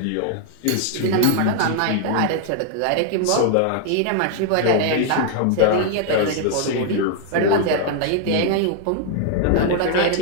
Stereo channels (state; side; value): different; both; correlation 0.00